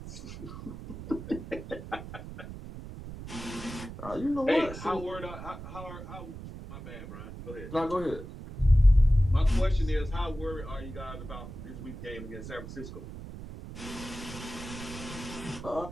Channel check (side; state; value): right; noise; rumble, 11 dB below the sound